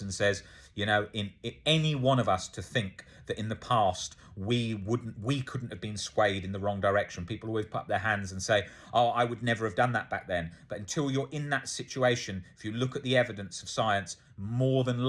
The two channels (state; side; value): identical; both; correlation 1.00